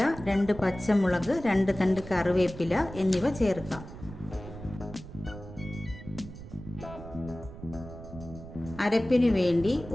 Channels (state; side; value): noise; right; rumble, 14 dB below the sound